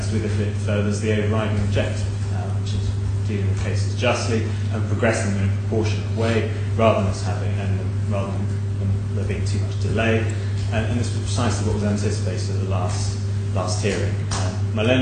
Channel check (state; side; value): identical; both; correlation 1.00